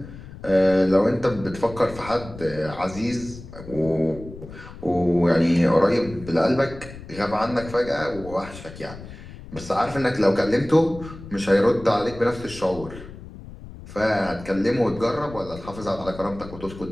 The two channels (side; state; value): left; noise; rumble, 15 dB below the sound